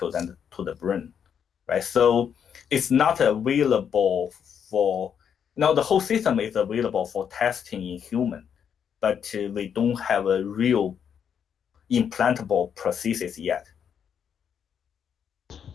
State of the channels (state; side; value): quieter; right; 7.9 dB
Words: and to the brain, right? So it's not available for the whole system is available for testing in human, but we don't have a real implantable prosthesis yet.